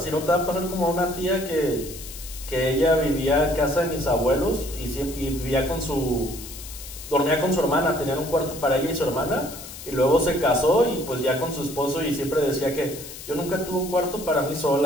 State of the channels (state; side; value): noise; left; hiss, 13 dB below the sound